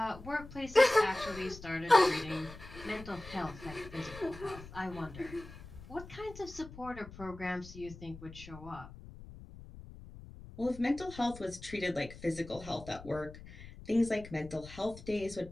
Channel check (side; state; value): left; noise; rumble, 15 dB below the sound